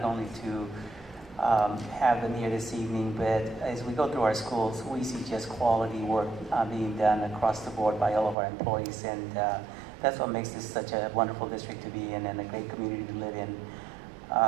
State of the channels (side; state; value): left; drops out; at 8.3 s